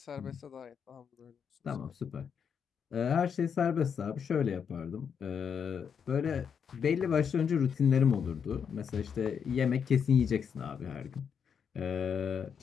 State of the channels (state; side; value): quieter; right; 7.1 dB